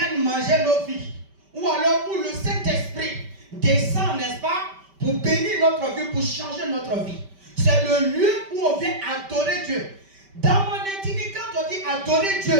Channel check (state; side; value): late; left; 5.1 ms